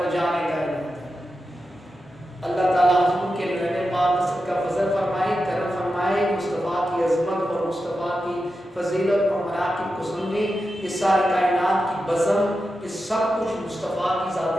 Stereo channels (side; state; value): both; normal; correlation 0.90